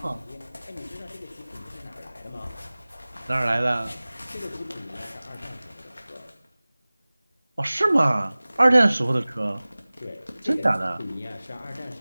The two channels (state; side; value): inverted; both; correlation -0.99